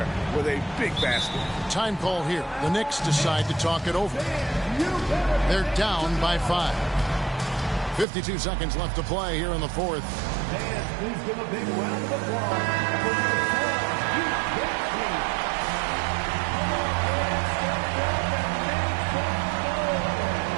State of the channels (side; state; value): left; drops out; at 8.1 s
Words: with a big basket. Time call here. The Knicks decide to talk it over. They're down by 5. 52 seconds left to play here in the fourth. Fans, please give a big round of applause for your